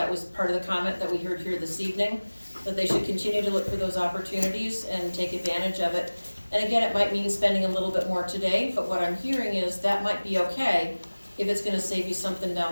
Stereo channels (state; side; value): inverted; both; correlation -1.00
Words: was part of the comment that we heard here this evening, that they should continue to look for those opportunities and take advantage of it. And again, it might mean spending a little bit more today, but what I'm hearing is that might be okay if it's gonna save you something